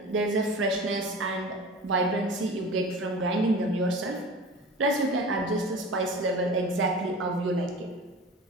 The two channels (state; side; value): normal; both; correlation 0.37